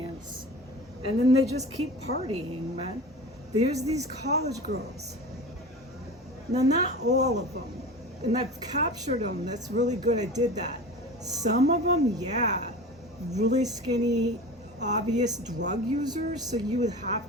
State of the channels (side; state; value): both; normal; correlation 0.33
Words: And then they just keep partying, man. There's these college girls. Now, not all of them, and I've captured them. That's really good. I did that. Some of them, yeah, really skinny, obvious drug users. So you would